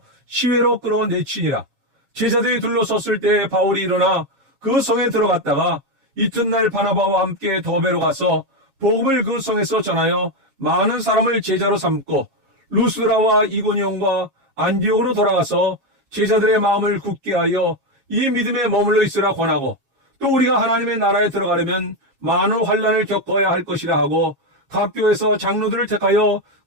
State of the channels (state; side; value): late; left; 7.3 ms